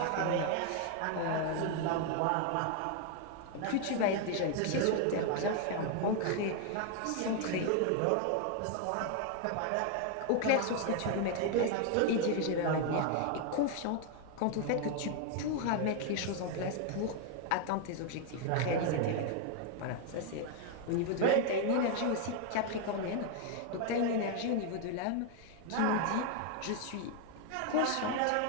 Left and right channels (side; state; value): both; different; correlation 0.01